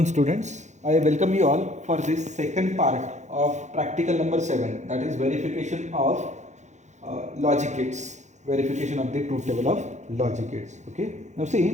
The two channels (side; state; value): left; late; 0.34 ms